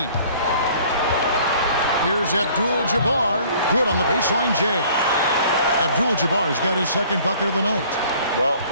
Here's Abdul-Jabbar. Good on the baseline J. Abdul-Jabbar's got his second bucket of the night. Well,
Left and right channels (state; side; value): inverted; both; correlation -0.53